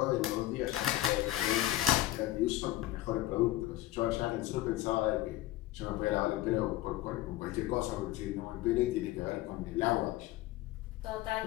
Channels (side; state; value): right; quieter; 15.6 dB